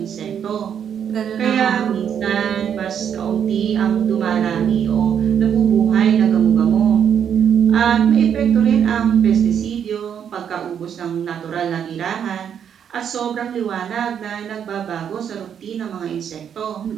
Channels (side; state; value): left; quieter; 8.4 dB